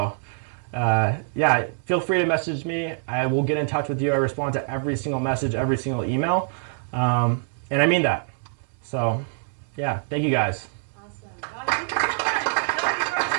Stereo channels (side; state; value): left; silent; 62 dB below the other